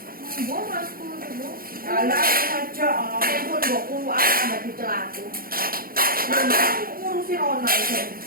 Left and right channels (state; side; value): late; left; 0.42 ms